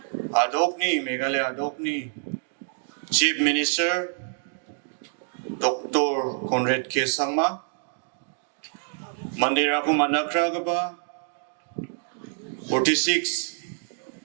Adokni Meghalaya Adokni Chief Minister Dr. Conrad Sangma Mandira ko manakragaba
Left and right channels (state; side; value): silent; left; 61 dB below the other